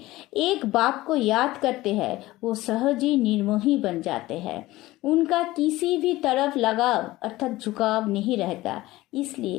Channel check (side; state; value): right; quieter; 17.8 dB